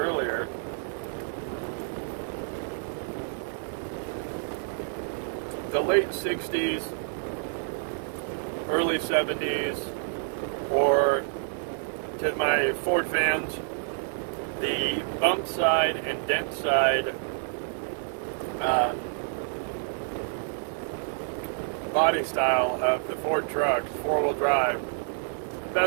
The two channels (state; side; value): silent; left; 59 dB below the other